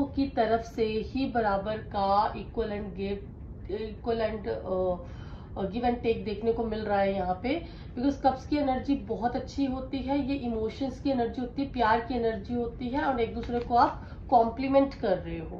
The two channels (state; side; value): identical; both; correlation 1.00